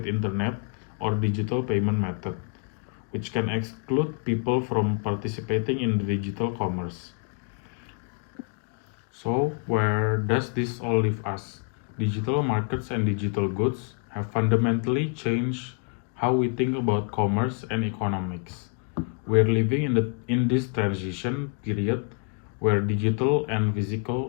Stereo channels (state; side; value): quieter; right; 37.3 dB